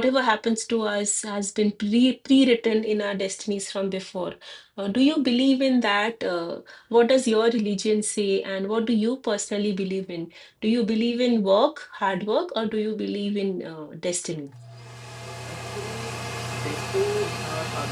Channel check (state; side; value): identical; both; correlation 1.00